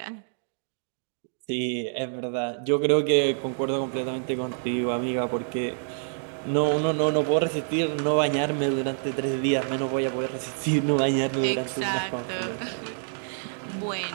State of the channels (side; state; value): left; silent; digital silence